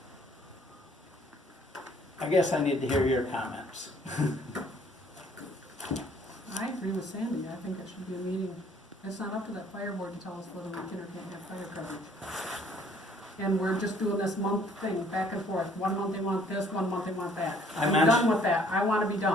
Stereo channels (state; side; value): normal; both; correlation 0.60